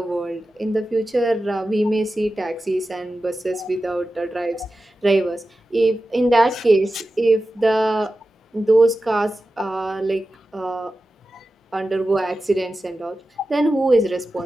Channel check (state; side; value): normal; both; correlation 0.93